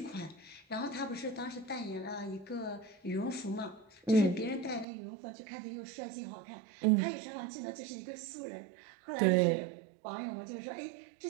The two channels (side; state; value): left; drops out; at 4.9 s